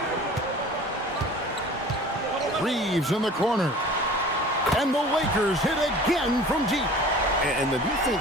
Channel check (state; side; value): normal; both; correlation 0.44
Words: Reeves in the corner. And the Lakers hit again from deep. And the